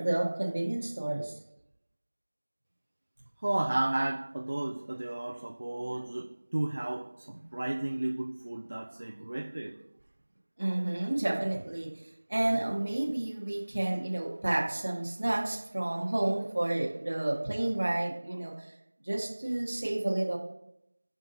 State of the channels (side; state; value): both; inverted; correlation -1.00